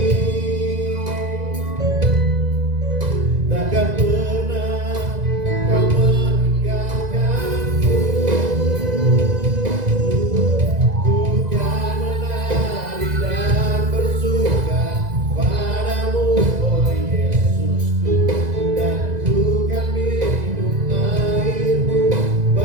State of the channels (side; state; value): left; late; 2.0 ms